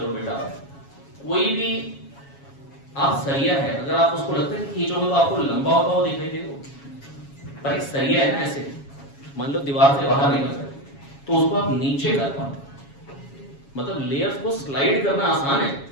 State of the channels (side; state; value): right; late; 7.2 ms